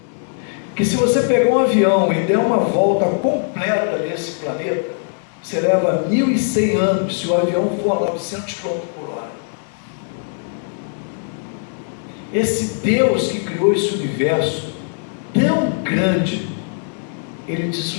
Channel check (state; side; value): silent; right; 60 dB below the other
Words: que se você pegar um avião e der uma volta completa nesse planeta, você leva 1.100 anos se o avião for a 900 km por hora. Esse Deus que criou esse universo tão grande, Ele te